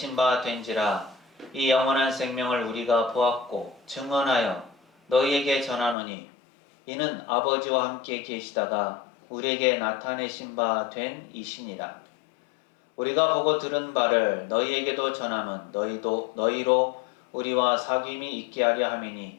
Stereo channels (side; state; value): right; drops out; at 6.0 s